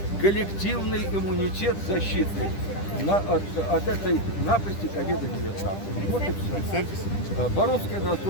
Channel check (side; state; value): right; late; 10 ms